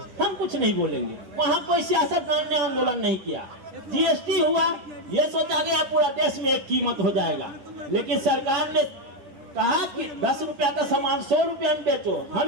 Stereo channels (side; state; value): left; late; 10 ms